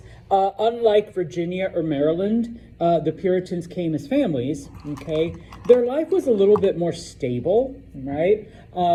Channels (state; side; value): identical; both; correlation 1.00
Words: unlike Virginia or Maryland, the Puritans came as families. Okay, their life was a little bit more stable, right?